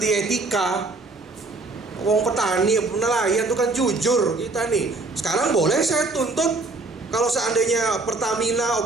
etika. Wong petani, nelayan itu kan jujur kita nih. Sekarang boleh saya tuntut kalau seandainya Pertamina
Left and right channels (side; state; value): left; quieter; 3.3 dB